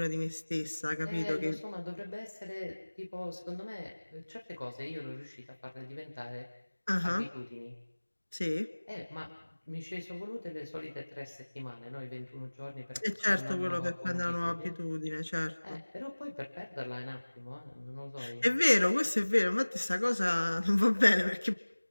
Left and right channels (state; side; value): inverted; both; correlation -1.00